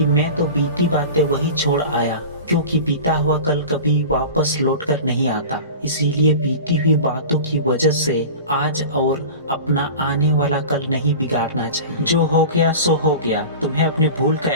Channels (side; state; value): both; inverted; correlation -0.34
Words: मैं तो बीती बातें वही छोड़ आया, क्योंकि बीता हुआ कल कभी वापस लौटकर नहीं आता। इसीलिए बीती हुई बातों की वजह से आज और अपना आने वाला कल नहीं बिगाड़ना चाहिए। जो हो गया सो हो गया। तुम्हें अपनी भूल का